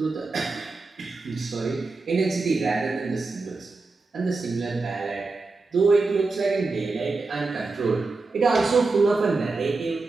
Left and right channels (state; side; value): quieter; left; 3.8 dB